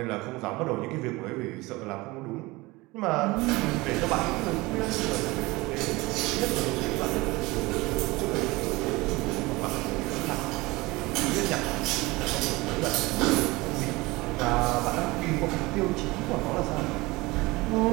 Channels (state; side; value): quieter; left; 22.1 dB